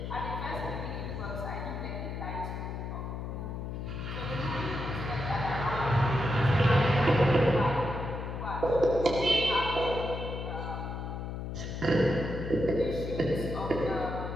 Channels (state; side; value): noise; left; hum, 5 dB below the sound